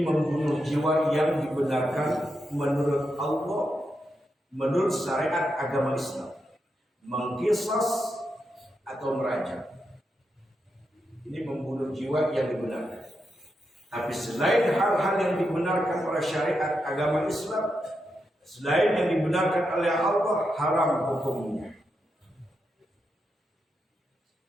membunuh jiwa yang dibenarkan menurut Allah, menurut syariat agama Islam. Mengkisos atau merajam, ini membunuh jiwa yang dibenarkan. Tapi selain hal-hal yang dibenarkan oleh syariat agama Islam, selain yang dibenarkan oleh Allah, haram hukumnya.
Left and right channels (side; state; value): both; normal; correlation 0.85